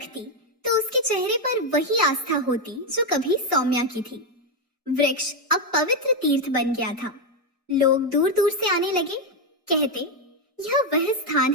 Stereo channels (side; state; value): both; normal; correlation 0.04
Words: तो उसके चेहरे पर वही आस्था होती जो कभी सौम्या की थी। वृक्ष अब पवित्र तीर्थ बन गया था। लोग दूर दूर से आने लगे, कहते, यह वह स्थान